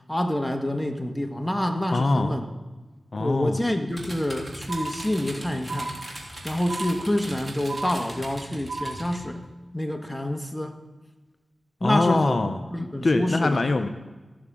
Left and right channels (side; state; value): both; normal; correlation 0.97